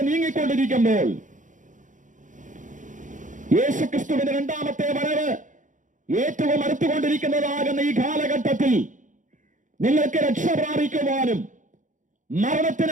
നീങ്ങിക്കൊണ്ടിരിക്കുമ്പോൾ, യേശുക്രിസ്തുവിന്റെ രണ്ടാമത്തെ വരവ് ഏറ്റവും അടുത്തുകൊണ്ടിരിക്കുന്നതാകുന്ന ഈ കാലഘട്ടത്തിൽ നിങ്ങൾക്ക് രക്ഷ പ്രാപിക്കുവാനും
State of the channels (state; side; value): late; left; 0.37 ms